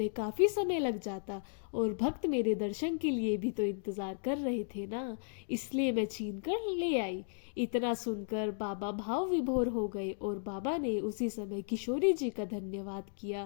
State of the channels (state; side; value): silent; right; digital silence